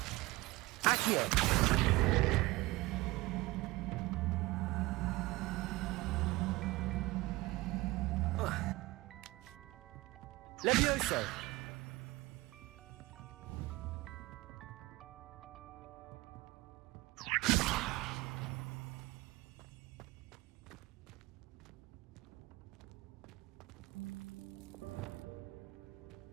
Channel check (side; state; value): left; quieter; 21.0 dB